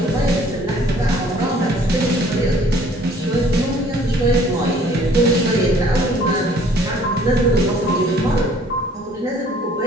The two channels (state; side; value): normal; both; correlation 0.57